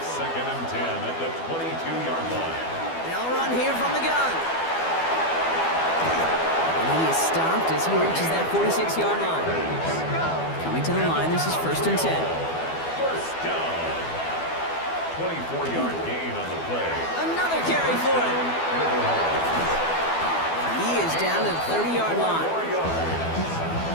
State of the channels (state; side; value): late; right; 12 ms